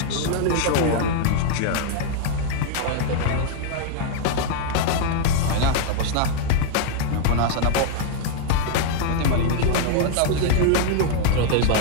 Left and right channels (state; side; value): different; both; correlation 0.00